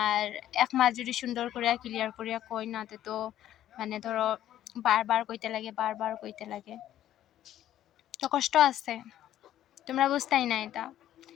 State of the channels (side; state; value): right; quieter; 12.2 dB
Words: এক মাস যদি সুন্দর করে ক্লিয়ার করিয়া কই না তো মানে ধরো বারবার কইতে লাগে তো কষ্ট আছে তোমরা বুঝতাই না এটা